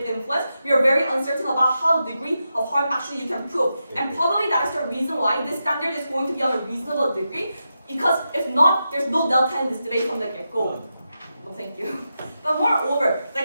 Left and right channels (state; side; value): inverted; both; correlation -0.88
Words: influence, we are very uncertain about how the degree of harm actually you can prove. And probably that is the reason why this standard is going to be on a reasonable degree, because if not, there's no delta in this debate from the get-go. thank you. But moreover,